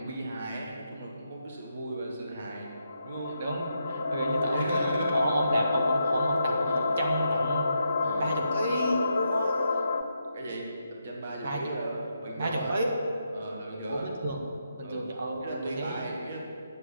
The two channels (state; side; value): inverted; both; correlation -0.81